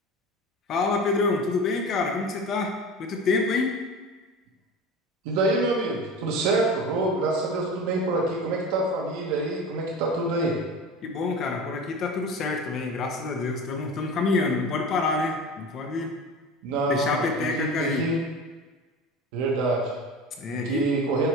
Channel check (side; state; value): both; normal; correlation 0.32